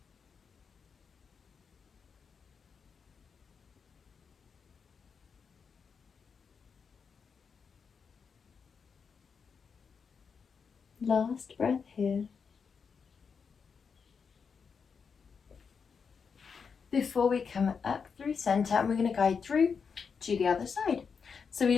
Last breath here. Before we come up through center, and we're going to guide through to the other side. So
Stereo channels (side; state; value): right; quieter; 5.9 dB